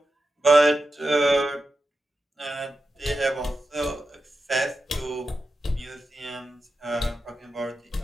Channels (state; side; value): normal; both; correlation 0.90